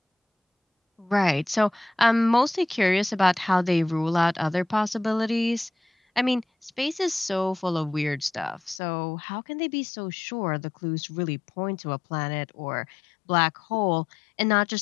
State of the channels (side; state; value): right; drops out; at 8.8 s